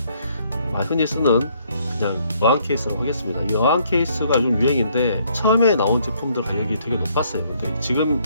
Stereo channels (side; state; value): both; inverted; correlation -0.67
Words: 흔히 쓰는 그냥 어항 케이스라고 하겠습니다. 이 어항 케이스가 요즘 유행인데, 처음에 나온 제품들 가격이 되게 높았어요. 근데 지금